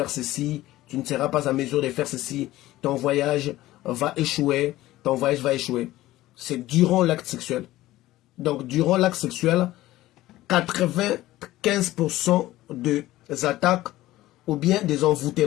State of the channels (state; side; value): quieter; right; 16.3 dB